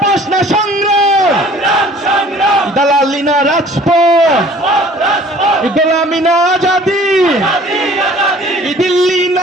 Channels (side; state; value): both; normal; correlation 0.51